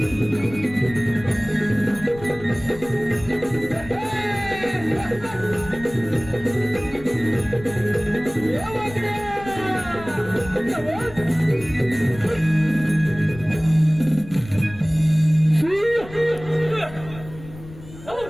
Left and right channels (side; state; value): left; noise; rumble, 17 dB below the sound